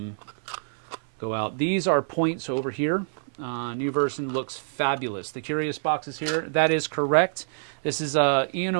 out. These are points over here. New version looks fabulous. The curious box is here. That is correct. This is Ian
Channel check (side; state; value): left; silent; 59 dB below the other